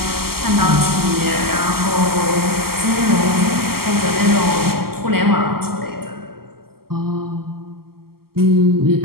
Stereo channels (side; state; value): left; late; 0.94 ms